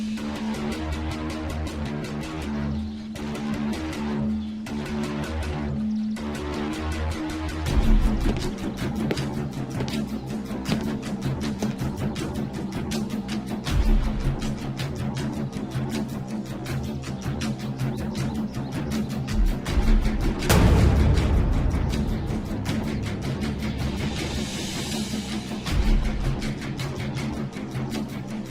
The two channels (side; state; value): both; identical; correlation 1.00